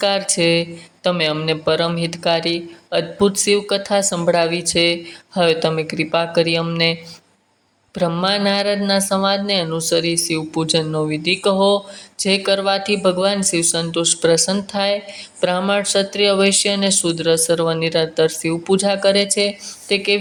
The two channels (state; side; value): identical; both; correlation 1.00